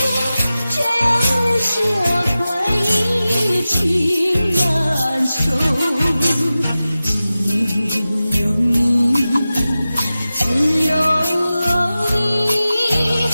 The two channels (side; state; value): both; inverted; correlation -0.95